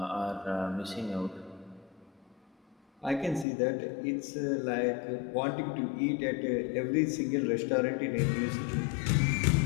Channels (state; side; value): drops out; right; at 3.5 s